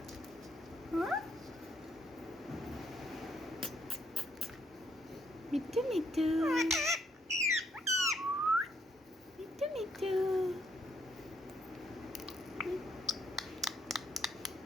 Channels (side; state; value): both; normal; correlation 0.72